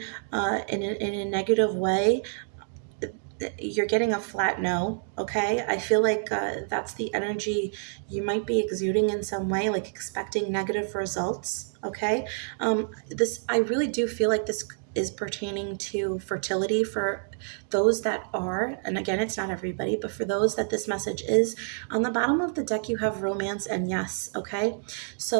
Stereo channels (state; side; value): silent; left; digital silence